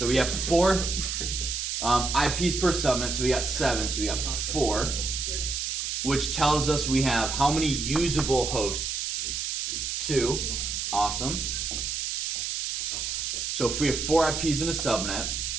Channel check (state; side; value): noise; right; hiss, 2 dB below the sound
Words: we have 4 IPs per subnet, so we got 7, so we got 4, which tells us we have how many usable hosts? 2. Awesome. So if we have 4 IPs in a subnet,